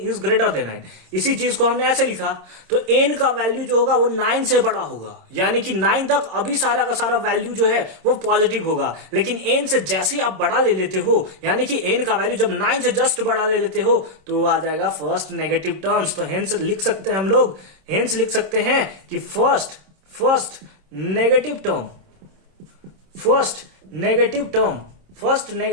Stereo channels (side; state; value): left; late; 26 ms